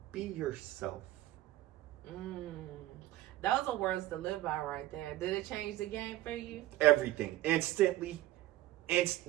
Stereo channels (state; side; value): quieter; left; 16.0 dB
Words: be yourself. Those are words to live by right there. Did it change the game for you? Everything. Instantly.